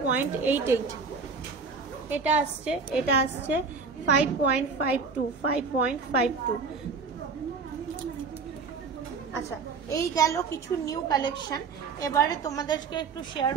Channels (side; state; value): left; quieter; 4.9 dB